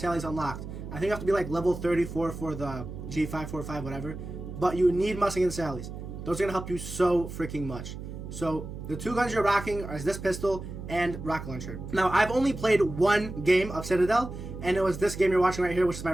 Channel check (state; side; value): noise; right; hum, 9 dB below the sound